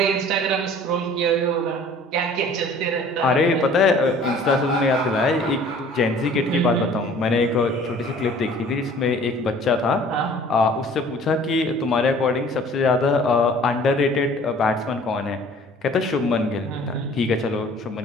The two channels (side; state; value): both; normal; correlation 0.50